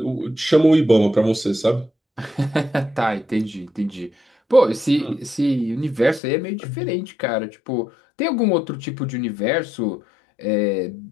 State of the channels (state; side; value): drops out; right; at 6.2 s